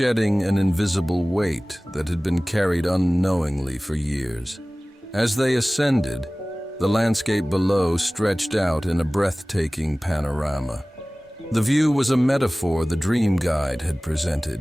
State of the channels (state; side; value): normal; both; correlation 0.98